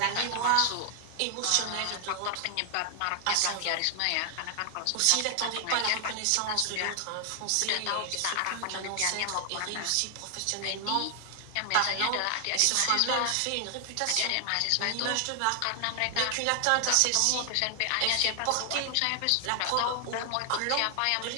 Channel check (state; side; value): different; both; correlation 0.00